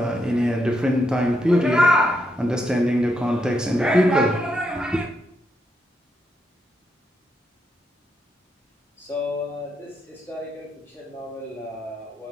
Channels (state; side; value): normal; both; correlation 0.80